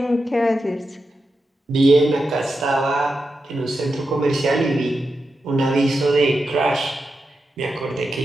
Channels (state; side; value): normal; both; correlation 0.88